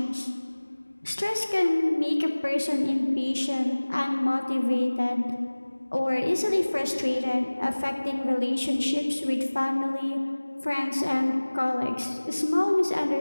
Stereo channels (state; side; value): inverted; both; correlation -1.00